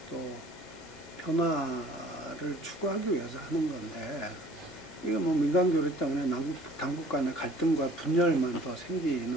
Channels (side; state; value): both; normal; correlation 0.52